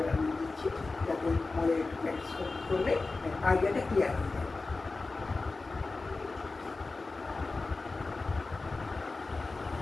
দিচ্ছি, যাতে আমাদের একটু প্র্যাকটিস করলে আইডিয়াটা ক্লিয়ার হয়ে যাবে।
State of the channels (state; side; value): quieter; right; 3.7 dB